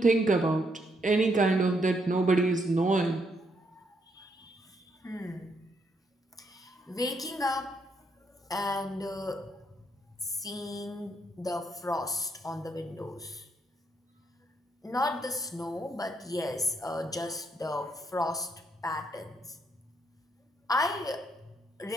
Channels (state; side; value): normal; both; correlation 0.75